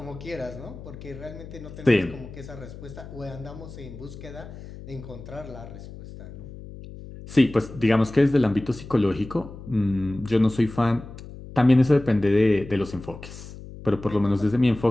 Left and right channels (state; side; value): noise; left; hum, 14 dB below the sound